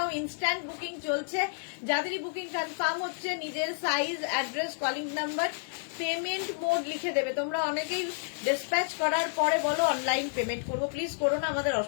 ইনস্ট্যান্ট বুকিং চলছে। যাদেরই বুকিং কনফার্ম হচ্ছে, নিজের size, address, calling number, payment mode লিখে দেবে। তোমরা অনেকেই ডিসপ্যাচ করার পরে বলো অনলাইন পেমেন্ট করবো, প্লিজ করো না, আমাদের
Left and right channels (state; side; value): silent; right; digital silence